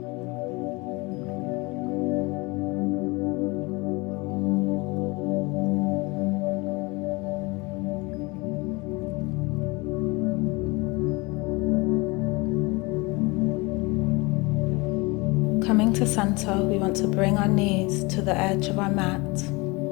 Coming to center, we want to bring our knees to the edge of our mat.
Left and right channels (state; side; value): quieter; right; 25.4 dB